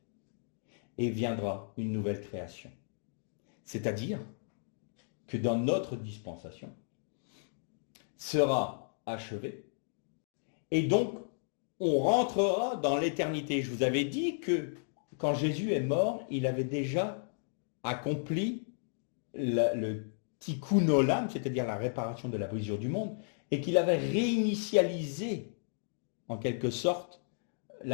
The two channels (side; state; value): right; silent; digital silence